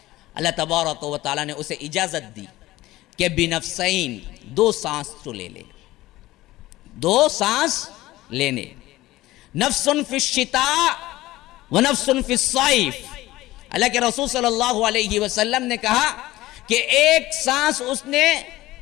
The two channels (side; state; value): right; quieter; 17.3 dB